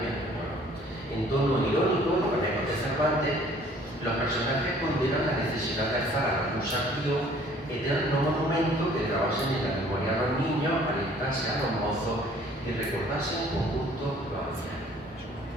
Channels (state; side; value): normal; both; correlation 0.56